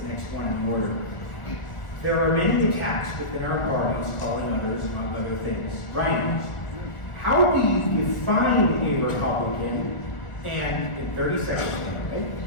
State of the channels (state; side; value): late; right; 1.4 ms